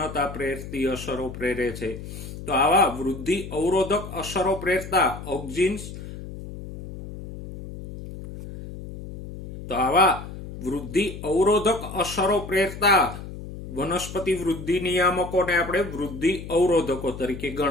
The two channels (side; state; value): left; noise; hum, 11 dB below the sound